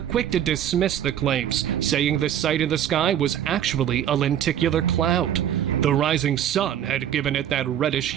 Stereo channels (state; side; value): quieter; left; 10.3 dB